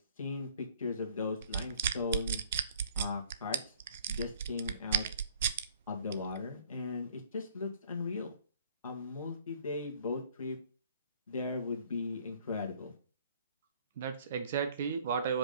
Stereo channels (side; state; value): both; inverted; correlation -0.56